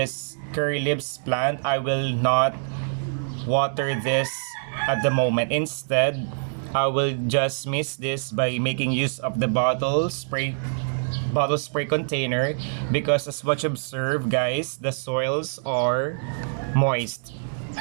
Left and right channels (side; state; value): left; silent; 62 dB below the other